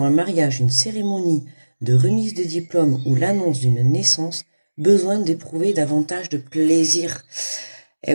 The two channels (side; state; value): both; inverted; correlation -1.00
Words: un mariage, une cérémonie de remise de diplôme ou l'annonce d'une naissance. Besoin d'éprouver davantage de plaisir.